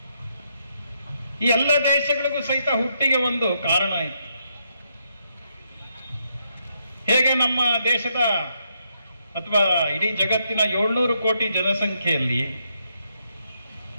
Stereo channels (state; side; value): inverted; both; correlation -0.77